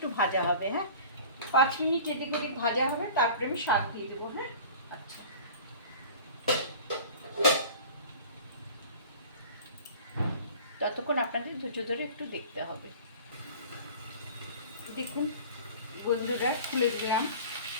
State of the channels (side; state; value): both; inverted; correlation -0.41